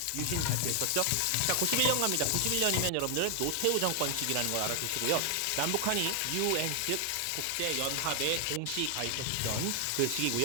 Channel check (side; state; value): both; different; correlation 0.00